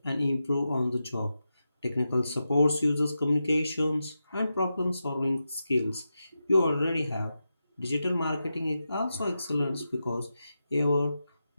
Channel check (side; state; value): both; inverted; correlation -0.89